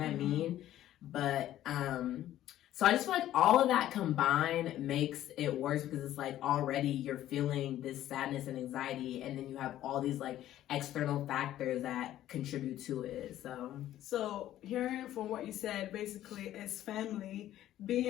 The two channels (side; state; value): right; quieter; 13.0 dB